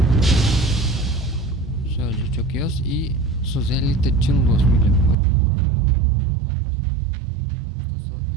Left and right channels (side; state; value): left; drops out; at 5.2 s